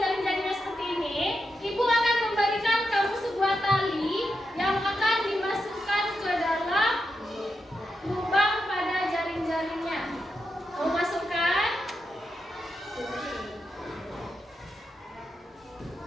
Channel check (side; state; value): both; normal; correlation 0.86